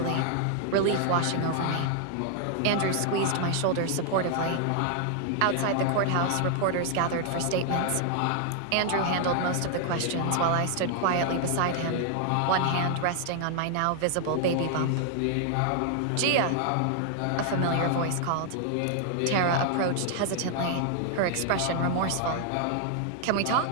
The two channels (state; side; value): different; both; correlation 0.00